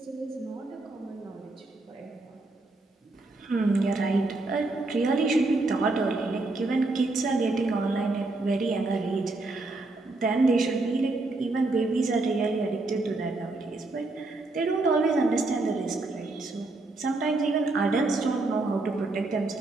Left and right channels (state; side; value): quieter; left; 3.1 dB